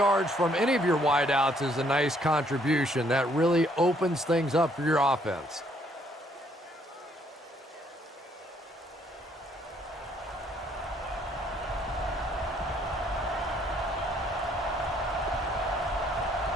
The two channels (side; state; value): both; normal; correlation 0.67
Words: from any of your wideouts is a nice contribution. That really opens things up for your offense.